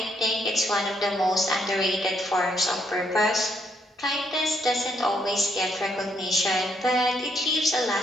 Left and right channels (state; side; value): normal; both; correlation 0.73